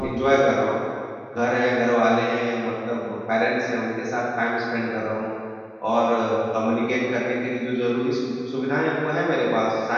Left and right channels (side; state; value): both; identical; correlation 1.00